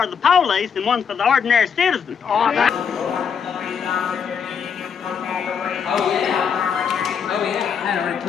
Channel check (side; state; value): right; quieter; 7.0 dB